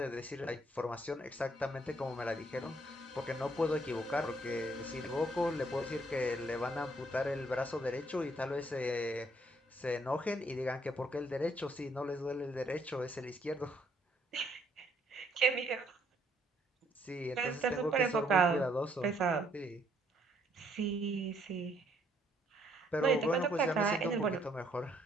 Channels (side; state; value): both; normal; correlation 0.68